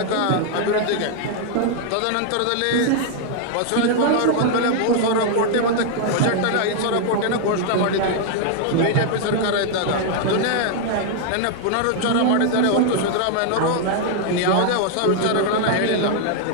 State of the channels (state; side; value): different; both; correlation 0.00